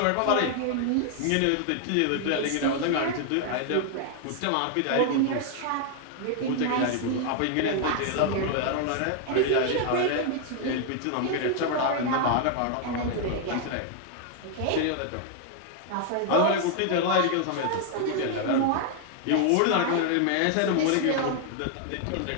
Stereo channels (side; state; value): both; different; correlation 0.00